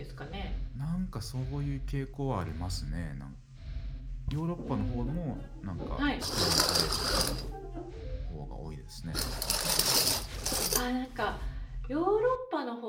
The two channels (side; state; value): both; identical; correlation 1.00